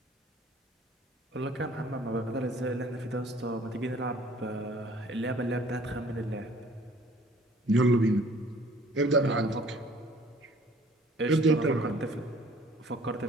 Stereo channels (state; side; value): normal; both; correlation 0.54